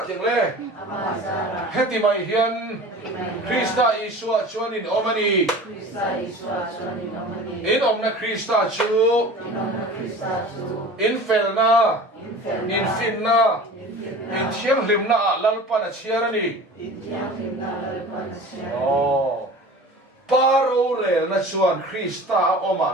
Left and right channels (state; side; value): normal; both; correlation 0.39